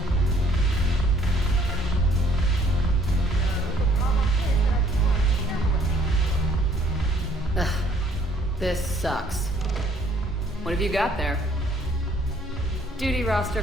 Ugh, this sucks. What have you got there? Duty roster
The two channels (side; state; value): both; normal; correlation 0.62